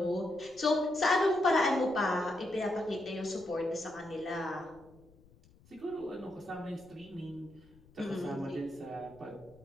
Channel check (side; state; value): left; noise; rumble, 26 dB below the sound